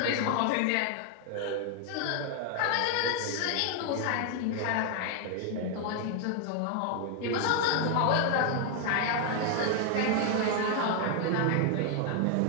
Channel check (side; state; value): both; different; correlation 0.00